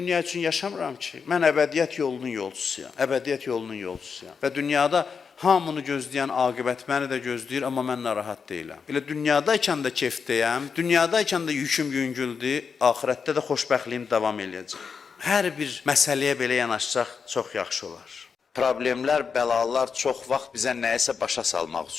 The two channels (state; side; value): quieter; right; 5.8 dB